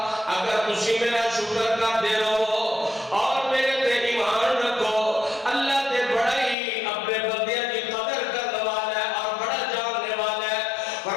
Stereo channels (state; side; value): drops out; right; at 6.6 s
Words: اگر تسی میرا شکر کر دے رہو اور میرے تے ایمان رکھو۔ اللہ تے بڑا ہی اپنے بندیاں کی قدر کرنے والا ہے اور بڑا جاننے والا ہے۔